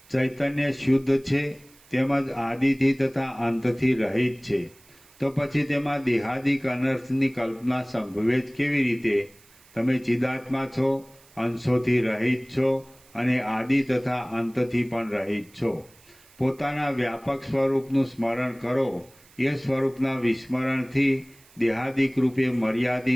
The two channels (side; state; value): right; noise; hiss, 27 dB below the sound